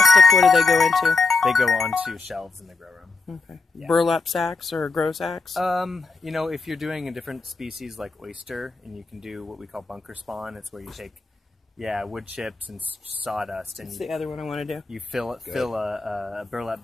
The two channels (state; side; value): quieter; right; 4.0 dB